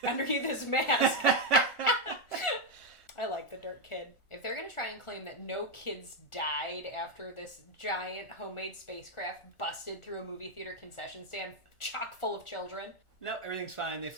underneath his mask. I like the dirt kid. If they're going to try and claim that no kids died after this giant homemade spacecraft busted through a movie theater concession stand chock full of children. No, everything's fine. They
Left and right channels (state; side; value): late; right; 1.4 ms